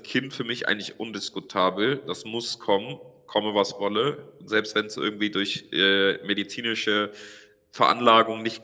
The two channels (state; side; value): identical; both; correlation 1.00